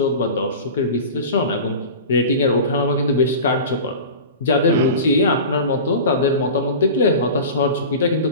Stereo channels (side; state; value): both; inverted; correlation -0.33